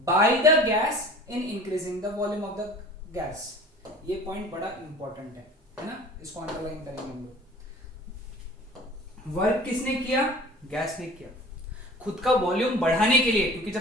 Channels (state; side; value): normal; both; correlation 0.43